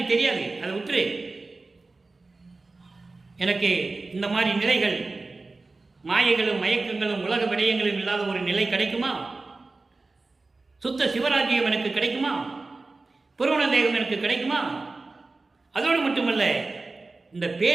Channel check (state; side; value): quieter; left; 3.5 dB